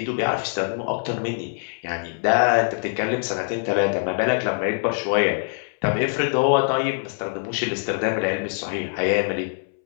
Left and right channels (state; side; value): silent; right; 63 dB below the other